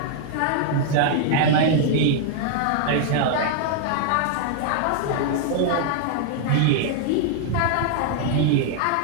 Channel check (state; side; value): different; both; correlation 0.00